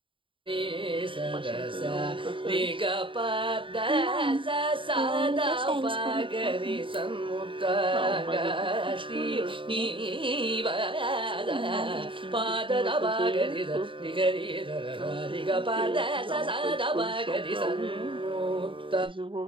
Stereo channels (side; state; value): left; late; 0.25 ms